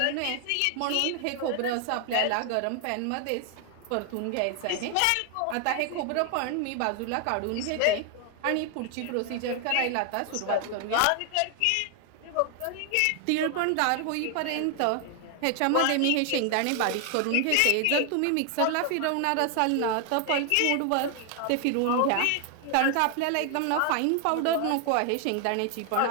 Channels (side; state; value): both; different; correlation 0.00